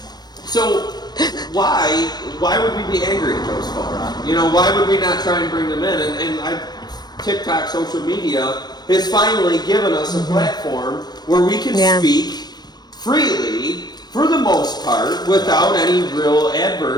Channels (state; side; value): late; right; 0.20 ms